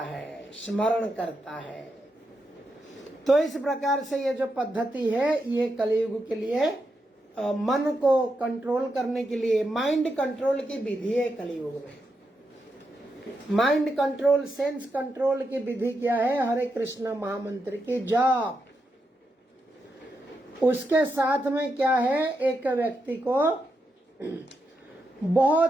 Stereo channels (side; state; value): both; normal; correlation 0.84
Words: स्मरण करता है। तो इस प्रकार से ये जो पद्धति है ये कलियुग के लिए मन को कंट्रोल करने के लिए, माइंड कंट्रोल की विधि है कलियुग में। माइंड कंट्रोल, सेंस कंट्रोल की विधि क्या है? हरे कृष्ण महामंत्र की जाप। उसके साथ में क्या है? एक व्यक्ति को